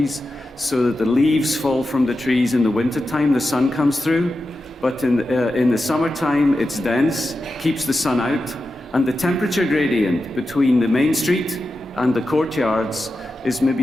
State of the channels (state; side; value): normal; both; correlation 0.91